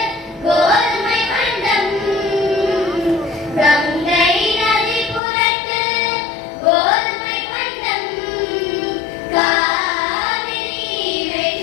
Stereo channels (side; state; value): right; drops out; at 5.2 s